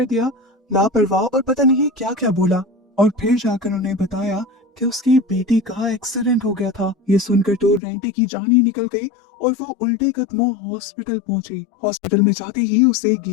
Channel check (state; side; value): drops out; right; at 7.8 s